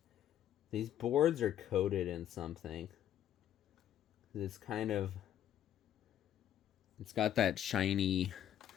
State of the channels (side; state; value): right; quieter; 10.8 dB